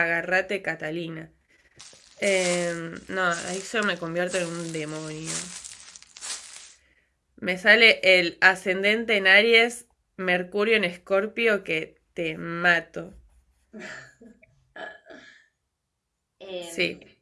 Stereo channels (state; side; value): identical; both; correlation 1.00